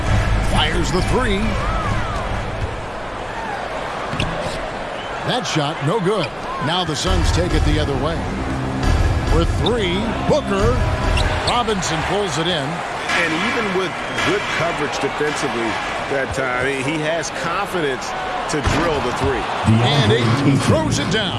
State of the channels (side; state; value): both; identical; correlation 1.00